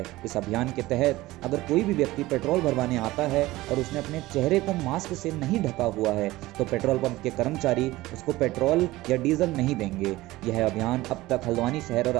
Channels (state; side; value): quieter; left; 18.3 dB